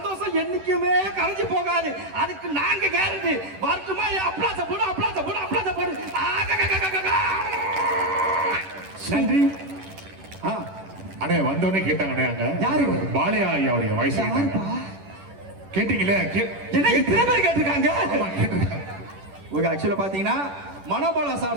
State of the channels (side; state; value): left; late; 10 ms